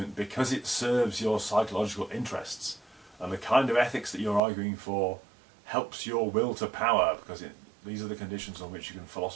because it serves your psychological interests, and the kind of ethics that you're arguing for helps your will to power, because these are the conditions on which you can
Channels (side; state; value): left; drops out; at 4.4 s